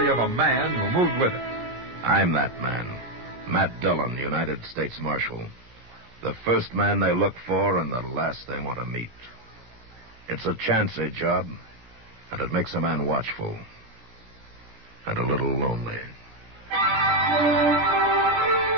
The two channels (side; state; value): left; late; 17 ms